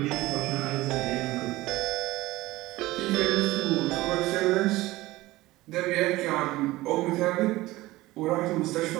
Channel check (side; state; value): left; quieter; 18.5 dB